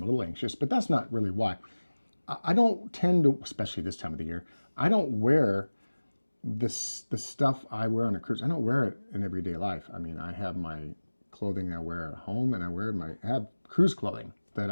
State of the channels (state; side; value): inverted; both; correlation -1.00